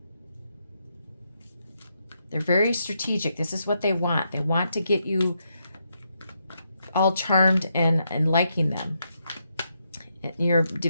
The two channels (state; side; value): inverted; both; correlation -0.80